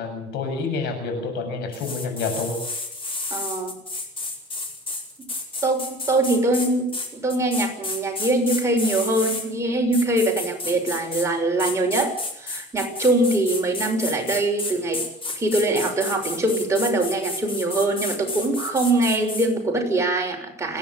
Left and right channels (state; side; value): normal; both; correlation 0.44